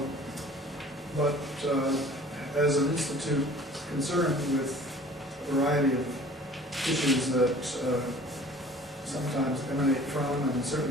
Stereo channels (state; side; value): normal; both; correlation 0.48